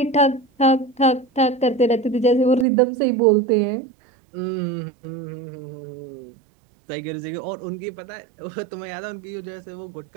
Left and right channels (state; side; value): drops out; left; at 2.7 s